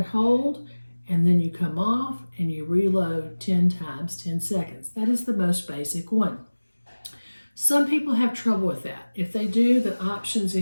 hold, and then you come off and you reload 10 times 10 seconds. That is the most basic one. Some people have trouble with that. If they do, the options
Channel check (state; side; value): inverted; both; correlation -1.00